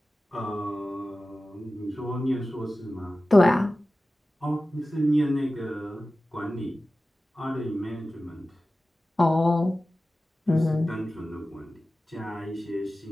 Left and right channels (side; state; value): both; normal; correlation 0.95